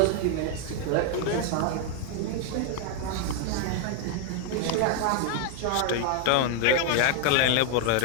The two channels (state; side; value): different; both; correlation 0.00